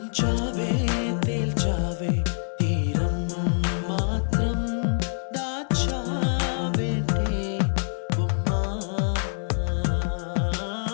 తేల్చావే తీరం మాత్రం దాచావేంటే బొమ్మ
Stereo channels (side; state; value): right; silent; digital silence